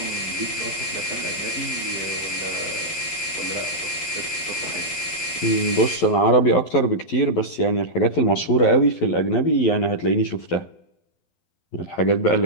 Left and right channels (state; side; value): late; right; 11 ms